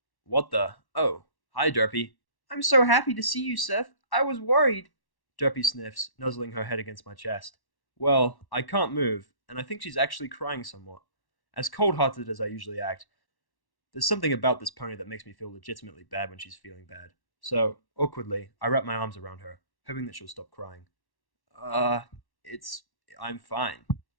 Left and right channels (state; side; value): late; right; 1.1 ms